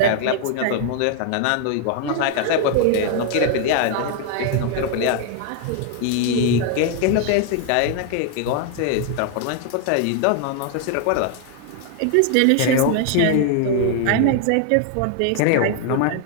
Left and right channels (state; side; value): different; both; correlation 0.00